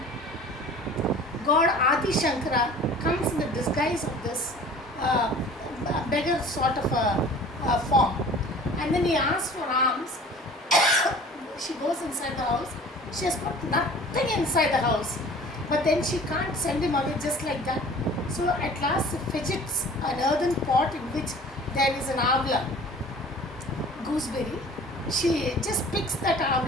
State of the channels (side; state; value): both; normal; correlation 0.46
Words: God Adi Shankara comes in the disguise of this beggar sort of a form. And then he asks for alms. She goes inside the house. She has got nothing inside the house. But then she can't send him away just like that. So at last she fidgets an earthen pot in which there is an avla, gooseberry. She just picks that